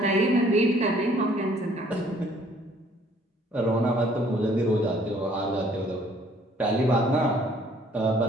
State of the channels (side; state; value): both; normal; correlation 0.60